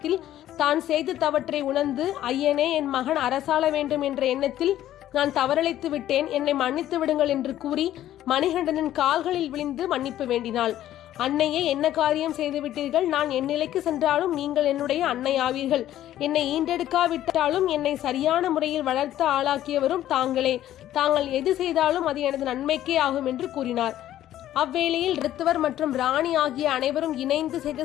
தான் செய்து தவற்றை உணர்ந்து, ஐயனே, என் மகன் அரசாள வேண்டும் என்ற எண்ணத்தில் நான் தவறளித்து விட்டேன், என்னை மன்னித்து விடுங்கள் என்று கூறி மணிகண்டனின் கால்களில் விழுந்து மன்னிப்பு வேண்டினாள். அன்னையே, என்ன காரியம் செய்துவிட்டீர்கள்? நான் என் நிலைக்கு சென்றாலும் நீங்கள் என்னுடைய அன்னை ஆவீர்கள். என்னை ஈண்டெடுக்காவிட்டாலும் என்னை சரியான முறையில் வளர்த்து ஆளாக்கியவரும் தாங்களே. தாங்கள் எது செய்தாலும் அது எனது நன்மைக்கே ஆகும் என்று கூறினார். அவ்வேளையில் ரித்துவர் மற்றும் ராணி ஆகிய அனைவரும் இணைந்து செய்த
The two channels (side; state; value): right; quieter; 12.7 dB